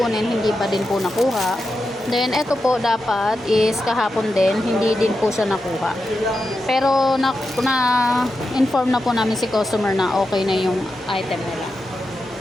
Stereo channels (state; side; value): normal; both; correlation 0.89